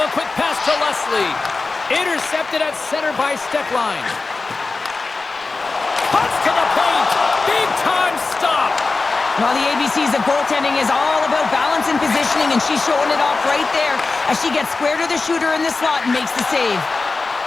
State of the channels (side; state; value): right; quieter; 3.8 dB